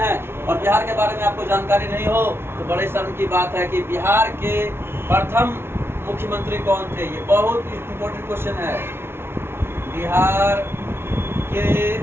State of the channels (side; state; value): left; late; 0.12 ms